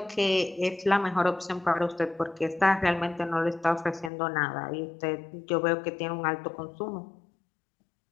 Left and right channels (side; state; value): right; drops out; at 4.1 s